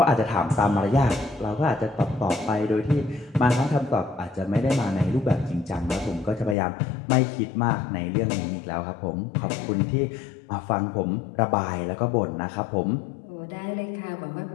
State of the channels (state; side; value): drops out; right; at 6.6 s